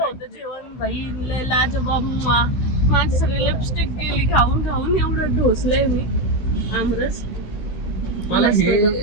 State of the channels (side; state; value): right; late; 16 ms